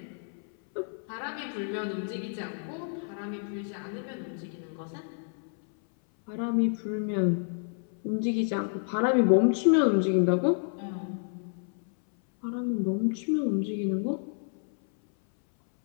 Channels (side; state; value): right; silent; 58 dB below the other